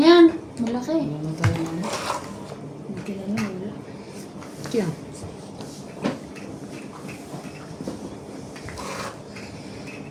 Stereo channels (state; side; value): identical; both; correlation 1.00